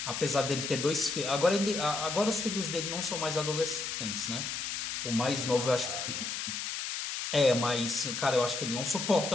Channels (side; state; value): left; noise; hiss, 4 dB below the sound